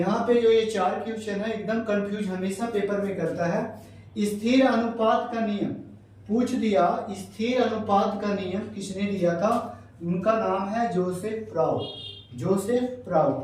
जो ये चार क्वेश्चन है एकदम कंफ्यूज हमेशा पेपर में करता है। स्थिर अनुपात का नियम पूछ दिया। स्थिर अनुपात का नियम किसने दिया था? उनका नाम है जोसेफ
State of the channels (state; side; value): identical; both; correlation 1.00